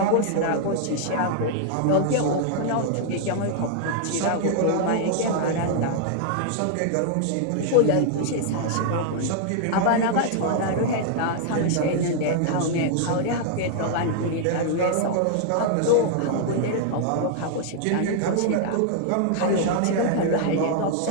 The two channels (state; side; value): different; both; correlation -0.01